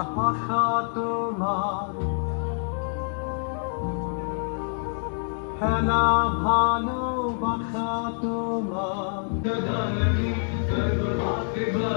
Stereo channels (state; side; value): silent; right; digital silence